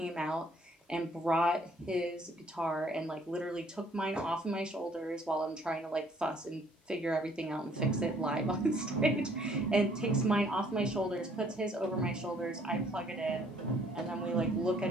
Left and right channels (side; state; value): both; normal; correlation 0.61